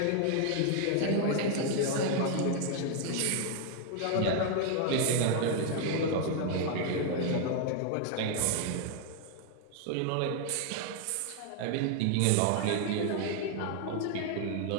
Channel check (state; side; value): different; both; correlation 0.00